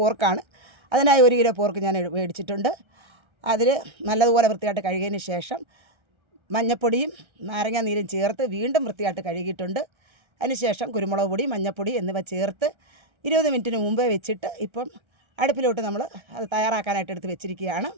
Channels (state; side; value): late; left; 1.3 ms